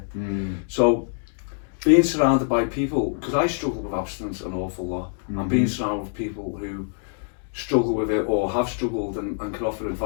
So, being surrounded by people, because I struggle with abstinence an awful lot, and being surrounded with people who struggle with it or have struggled and can offer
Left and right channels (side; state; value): right; silent; digital silence